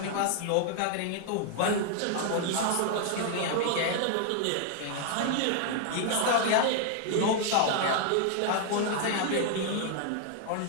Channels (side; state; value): both; different; correlation 0.00